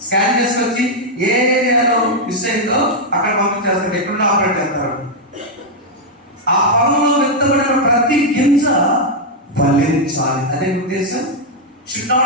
స్కాన్ చేసుకొచ్చి ఏ ఏరియాలో మిస్ అయిందో అక్కడ పంపించేస్తారు, ఎక్కడున్నా ఆపరేట్ చేస్తారు. ఆ పొలంలో విత్తబడిన ప్రతి గింజ ఫలించాలి, అదే ఉద్దేశం. Should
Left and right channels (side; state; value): both; normal; correlation -0.02